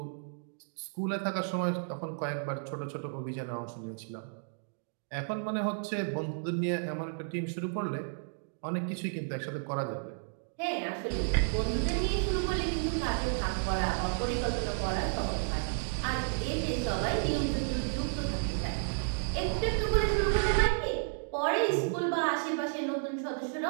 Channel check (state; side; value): silent; left; digital silence